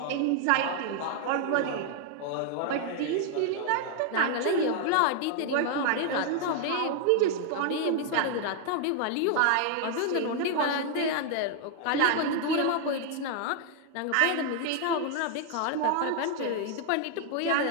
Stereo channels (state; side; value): different; both; correlation 0.00